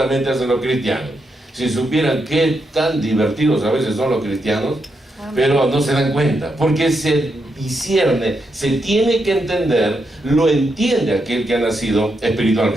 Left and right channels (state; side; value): normal; both; correlation 0.82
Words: hacen los cristianos. Si supieran qué tan divertidos a veces son los cristianos, pero no se dan cuenta, porque se discierne, se tiene que entender, lo entiende aquel que ha nacido